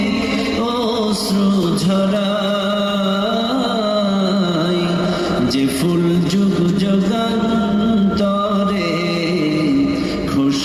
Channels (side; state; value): both; identical; correlation 1.00